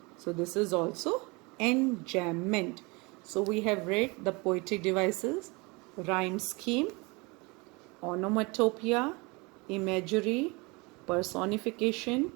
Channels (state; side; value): quieter; left; 27.0 dB